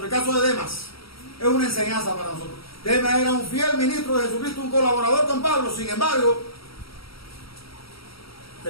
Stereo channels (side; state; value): right; late; 0.75 ms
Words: El caso de Demas es una enseñanza para nosotros. Demas era un fiel ministro de Jesucristo, un colaborador con Pablo, sin embargo,